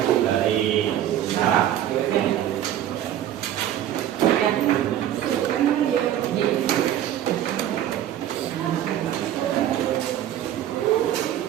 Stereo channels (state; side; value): quieter; left; 11.5 dB